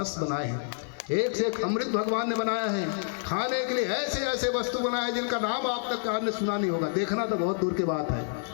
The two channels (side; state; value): right; silent; digital silence